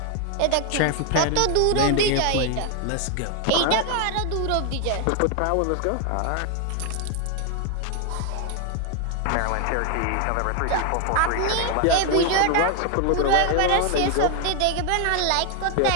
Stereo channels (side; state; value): both; different; correlation 0.01